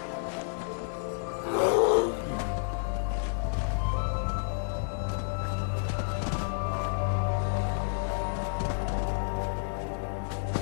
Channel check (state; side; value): silent; right; digital silence